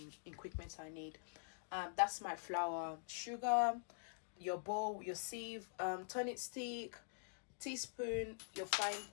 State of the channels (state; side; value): silent; right; digital silence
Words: equipment I need. That's my flour, sugar, your bowl, your sieve, tonic stick, teaspoon, your frying